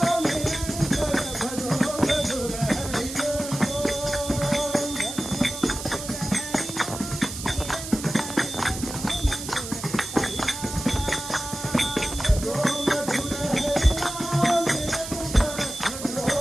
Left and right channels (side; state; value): right; noise; hiss, 9 dB below the sound